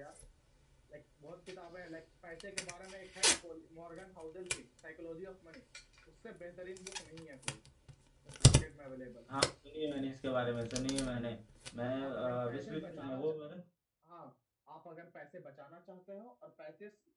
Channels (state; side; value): identical; both; correlation 1.00